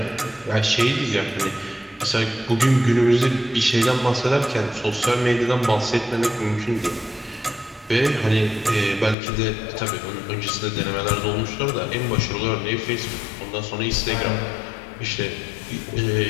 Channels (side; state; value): right; drops out; at 9.2 s